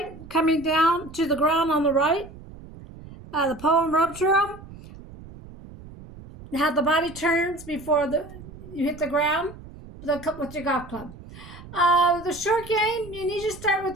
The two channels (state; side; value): noise; right; rumble, 17 dB below the sound